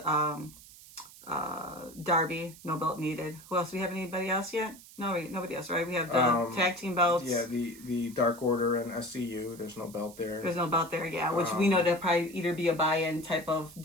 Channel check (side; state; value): right; noise; hiss, 19 dB below the sound